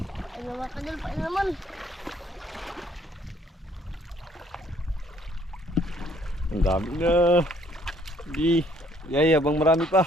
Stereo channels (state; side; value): normal; both; correlation 0.63